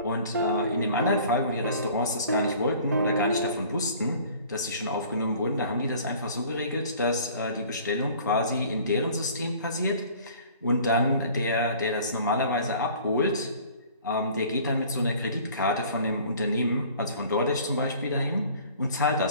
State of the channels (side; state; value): both; inverted; correlation -0.49